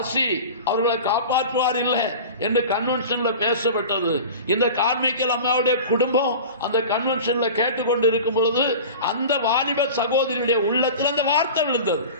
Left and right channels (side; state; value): both; inverted; correlation -0.35